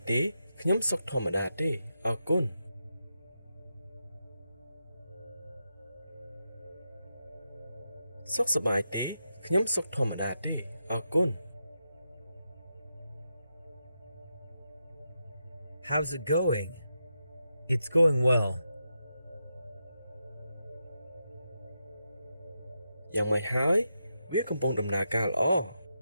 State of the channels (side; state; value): both; inverted; correlation -0.86